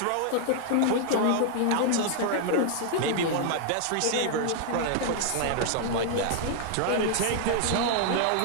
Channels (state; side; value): different; both; correlation 0.00